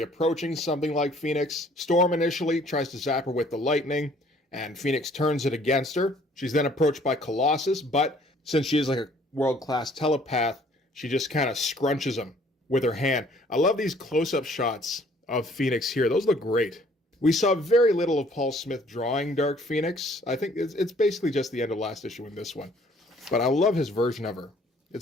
approaching something like Phoenix. Storm initially tries to zap her with the lightning, and Phoenix turns it against her. She's then approached by Colossus, but since she is like a world-class telepath, she just kind of scrunches him with her hand. I love these close-up shots of Phoenix here. Those look great. We saw very little of Paul Smith drawing Dark Phoenix. I think it's basically just the end of last issue in this one. But I love his version of her.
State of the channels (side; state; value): both; normal; correlation 0.59